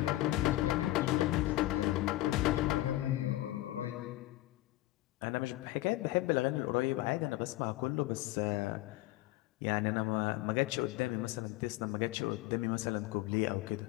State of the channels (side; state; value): right; quieter; 17.1 dB